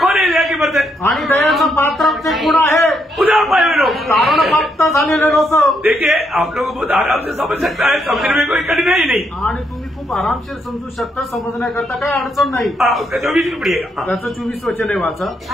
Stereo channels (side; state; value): both; normal; correlation 0.77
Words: कौन है? दया की बर्तन आणि दयाचं पात्र ते कोण आहे? उदार पाए हुए लोग। तारण प्राप्त झालेले लोक। देखिए आप लोग बहुत आराम से समझ सकता है, समझने में कोई कठिनाई नहीं। आणि तुम्ही खूप आरामशीर समजू शकता, समजण्याकरता काही अडचण नाही। उसका 24 में पढ़िएगा। त्याचं 24 वचन आहे वाचा।